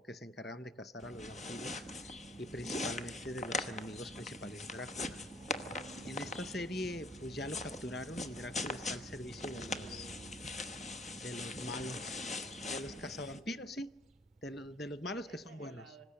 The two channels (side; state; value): both; normal; correlation 0.57